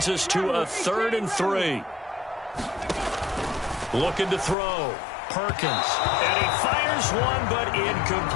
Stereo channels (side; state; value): right; drops out; at 4.5 s